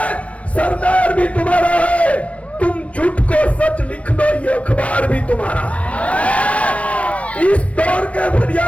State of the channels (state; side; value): late; right; 0.064 ms